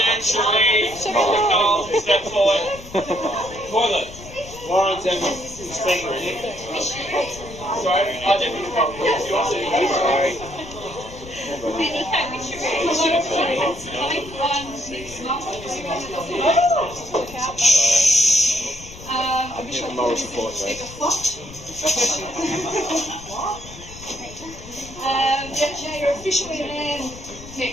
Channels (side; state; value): left; noise; rumble, 16 dB below the sound